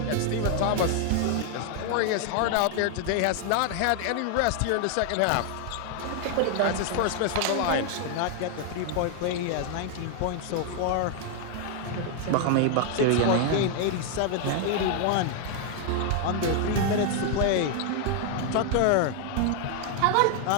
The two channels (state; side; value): different; both; correlation 0.00